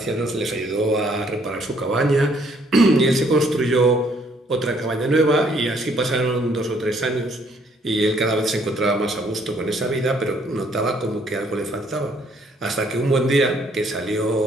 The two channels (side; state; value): both; normal; correlation 0.65